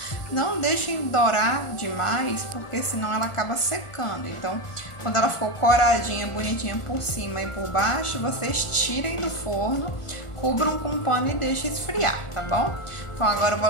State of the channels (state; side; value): late; right; 1.4 ms